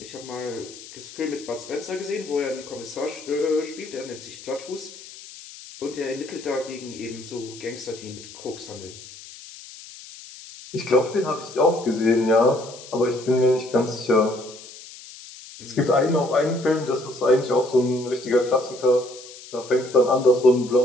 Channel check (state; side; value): noise; left; hiss, 17 dB below the sound